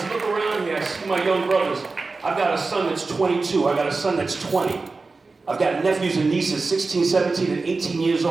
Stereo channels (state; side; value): quieter; left; 3.9 dB